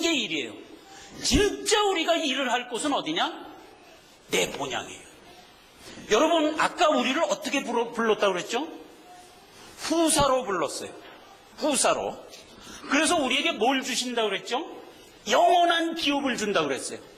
게 일이에요. 진짜 우리가 일을 할 곳은 어디냐? 내 본향이에요. 여러분, 아까 우리를 어떻게 불렀다고 그랬죠? 후사로 불렀어요. 후사로. 그래서 우리에게 뭘 주신다고 그랬죠? 영원한 기업을 준다고 그랬어요.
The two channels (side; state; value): both; identical; correlation 1.00